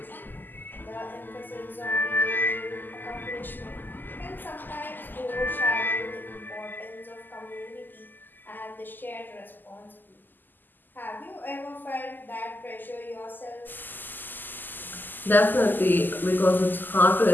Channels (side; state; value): right; late; 0.089 ms